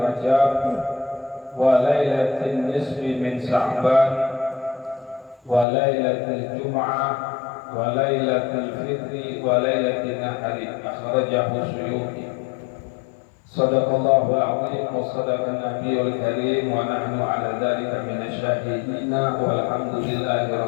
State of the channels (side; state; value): right; drops out; at 5.7 s